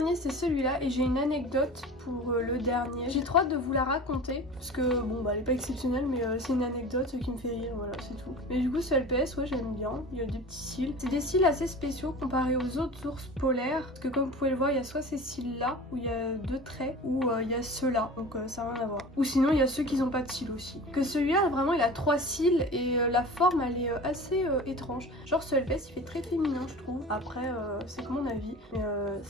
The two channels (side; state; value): both; normal; correlation 0.37